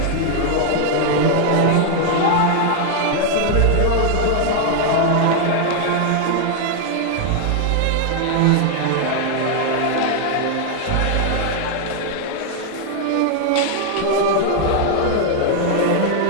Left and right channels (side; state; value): both; different; correlation 0.00